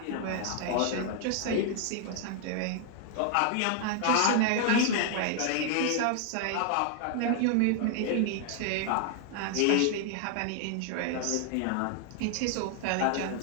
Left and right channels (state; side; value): different; both; correlation 0.00